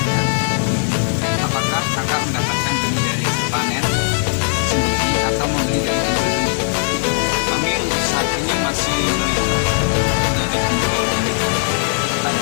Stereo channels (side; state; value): right; silent; 67 dB below the other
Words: Apakah kakak mendapatkan benih dari panen sendiri atau membeli dari pembeli? Kami untuk saat ini masih melihat dari penjual benih.